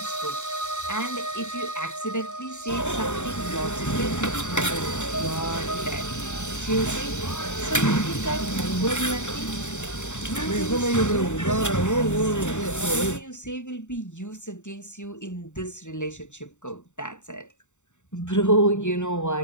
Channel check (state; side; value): late; right; 0.84 ms